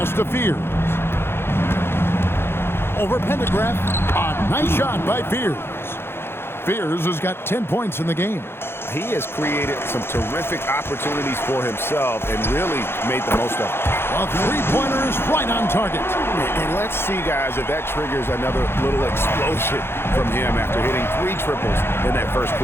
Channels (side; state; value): right; late; 0.11 ms